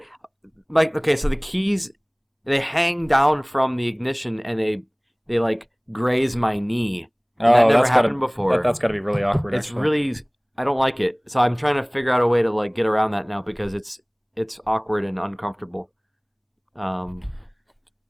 Like, okay, so the keys, they hang down from the ignition and they like graze my knee. And that never happened before. That's got to be really awkward. It's actually. really, I don't like it. So I'm trying to figure out a way to like get around that now because it's awkward and uncomfortable.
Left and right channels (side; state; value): both; identical; correlation 1.00